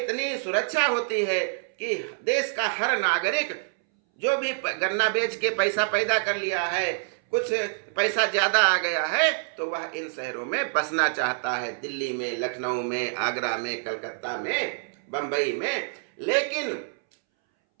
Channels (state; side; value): silent; left; 61 dB below the other